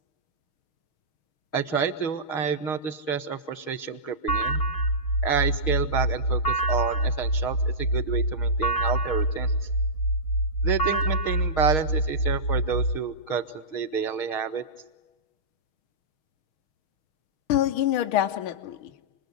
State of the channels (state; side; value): late; right; 6.4 ms